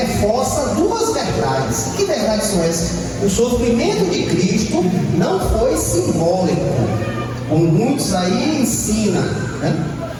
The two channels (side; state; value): both; identical; correlation 1.00